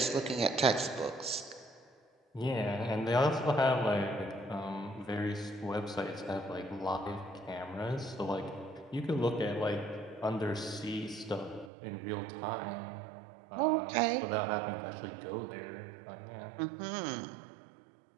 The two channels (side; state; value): left; drops out; at 11.7 s